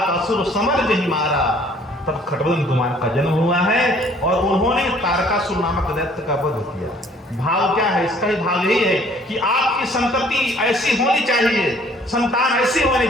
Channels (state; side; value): normal; both; correlation 0.58